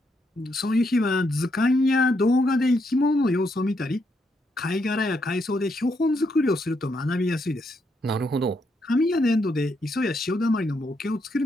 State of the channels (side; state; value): both; normal; correlation 0.78